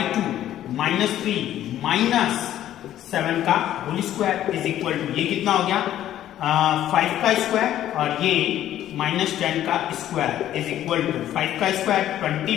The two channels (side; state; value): right; quieter; 12.1 dB